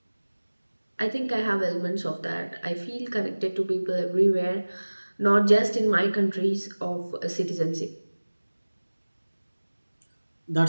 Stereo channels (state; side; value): inverted; both; correlation -1.00